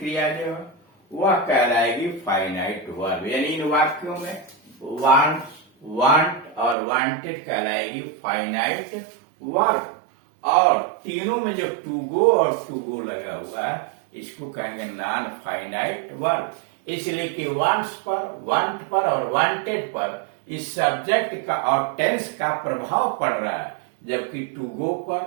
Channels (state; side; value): drops out; left; at 6.8 s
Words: जो है वह कहलाएगी फाइनाइट वर्ब। यानी इन वाक्यों में वांट्स, वांट और वांटेड कहलाएगी फाइनाइट वर्ब, और तीनों में जो टू गो और टू गो लगा हुआ है इसको कहेंगे नॉन फाइनाइट वर्ब। इसलिए कि वांट्स पर, वांट पर और वांटेड पर इस सब्जेक्ट का और टेंस का प्रभाव पड़ रहा है, जबकि टू गो